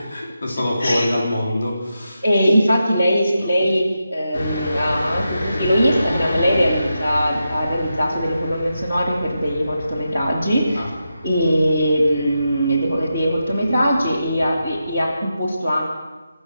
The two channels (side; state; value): both; inverted; correlation -0.88